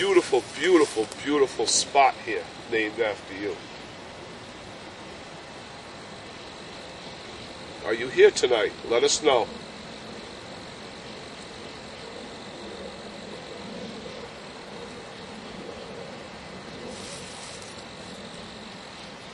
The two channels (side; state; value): both; identical; correlation 1.00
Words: beautiful, beautiful spot here named after you. Are you here tonight? Let us know.